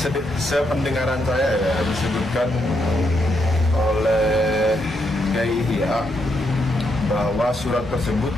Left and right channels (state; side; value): normal; both; correlation 0.79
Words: sependengaran saya ya disebutkan oleh Kiai Ihya bahwa surat tersebut